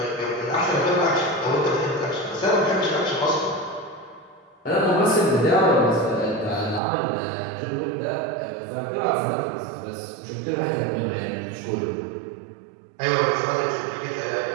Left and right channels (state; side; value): drops out; left; at 6.8 s